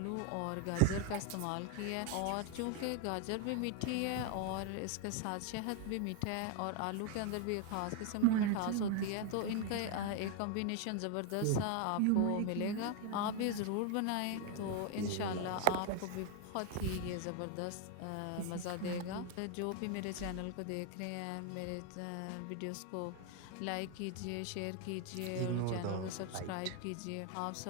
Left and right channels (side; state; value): both; different; correlation 0.01